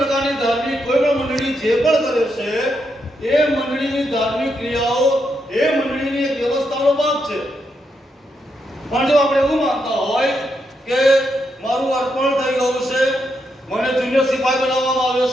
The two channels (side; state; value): both; normal; correlation 0.81